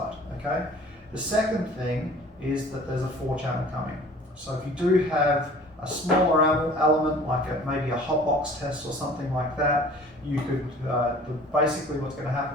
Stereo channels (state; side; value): normal; both; correlation 0.48